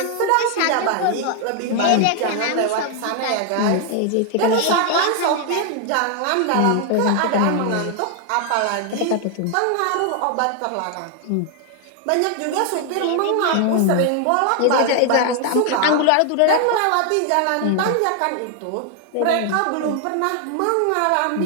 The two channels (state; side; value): different; both; correlation 0.00